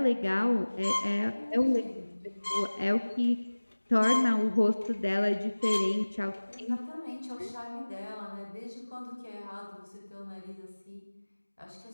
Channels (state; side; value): inverted; both; correlation -1.00